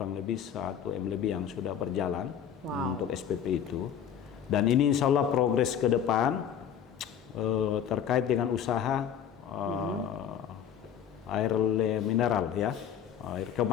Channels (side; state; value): right; quieter; 8.8 dB